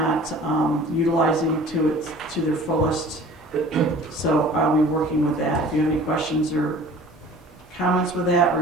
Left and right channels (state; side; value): normal; both; correlation 0.46